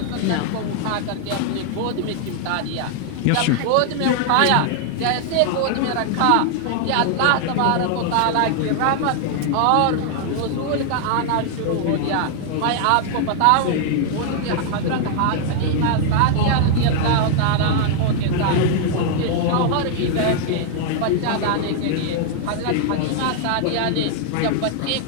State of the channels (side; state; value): both; different; correlation 0.00